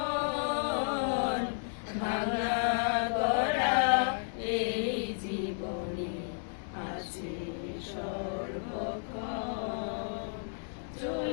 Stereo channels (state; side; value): silent; right; digital silence